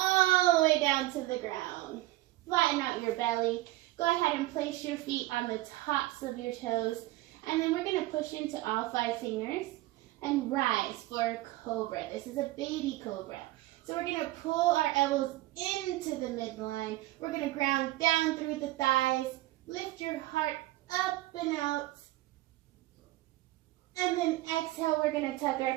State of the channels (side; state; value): left; quieter; 17.8 dB